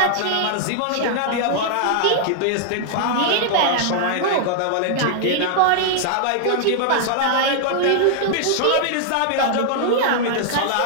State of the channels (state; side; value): different; both; correlation -0.01